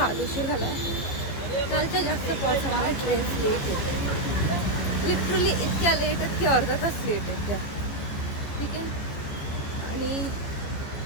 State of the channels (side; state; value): right; late; 14 ms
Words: उशीर झाला आहे. कालच्या जास्त पावसामुळे ट्रेन्स लेट येते, लिटरली इतक्या लेट आहेत की अर्धा तास लेट आहेत त्या. ठीक आहे. आणि